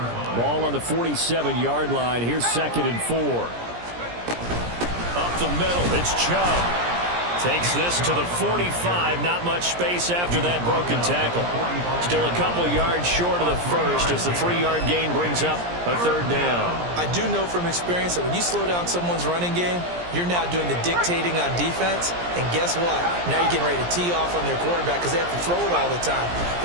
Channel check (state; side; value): late; left; 17 ms